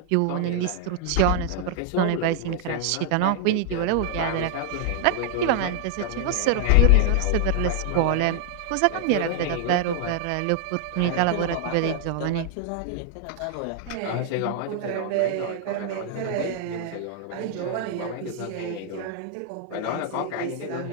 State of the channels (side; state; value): both; different; correlation 0.00